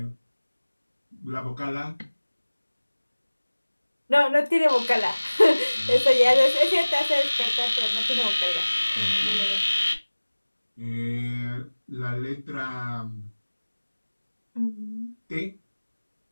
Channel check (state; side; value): inverted; both; correlation -1.00